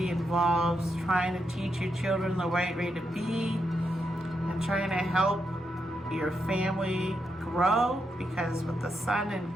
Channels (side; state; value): both; normal; correlation 0.83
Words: involves trying to teach your children the right way to be and trying to help your family grow, because with the Sun in